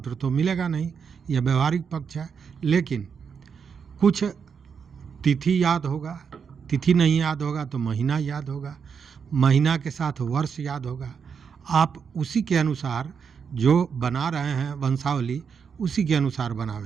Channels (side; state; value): left; quieter; 6.5 dB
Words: तो मिलेगा नहीं, यह व्यवहारिक पक्ष है। लेकिन कुछ तिथि याद होगा, तिथि नहीं याद होगा तो महीना याद होगा, महीना के साथ वर्ष याद होगा। आप उसी के अनुसार जो बना रहे हैं वंशावली, उसी के अनुसार